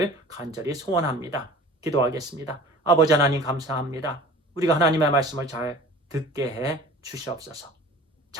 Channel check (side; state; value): both; normal; correlation 0.43